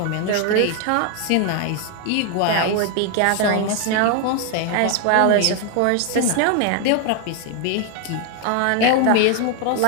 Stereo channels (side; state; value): both; different; correlation 0.01